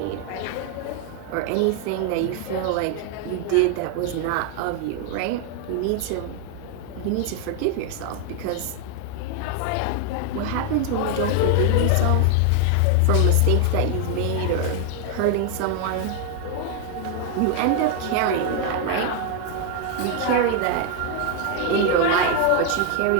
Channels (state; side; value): different; both; correlation 0.00